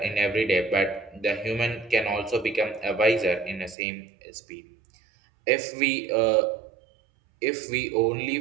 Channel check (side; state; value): left; drops out; at 3.8 s